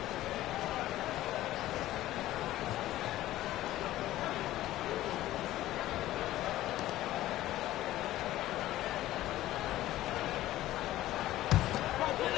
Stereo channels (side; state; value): right; quieter; 14.9 dB